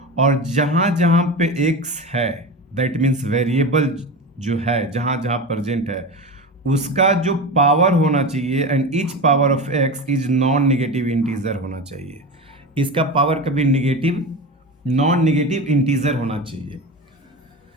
और जहाँ जहाँ पे x है दैट मीन्स वेरिएबल जो है जहाँ जहाँ प्रेजेंट है उसका जो पावर होना चाहिए, and each power of x is non negative integer होना चाहिए। इसका पावर कभी नॉन नेगेटिव इंटीजर होना चाहिए,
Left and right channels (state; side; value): normal; both; correlation 0.26